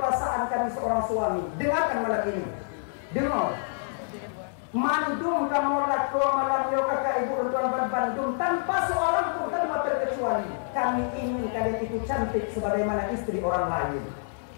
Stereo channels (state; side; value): silent; right; 60 dB below the other